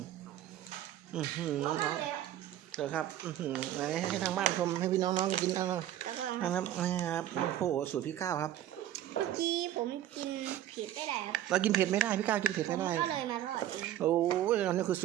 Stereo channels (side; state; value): left; quieter; 12.3 dB